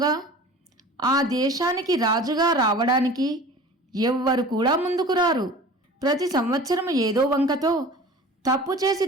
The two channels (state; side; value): normal; both; correlation 0.41